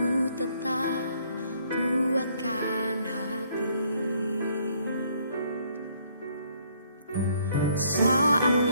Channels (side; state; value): both; inverted; correlation -0.66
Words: tetap kuatkan hati. Saat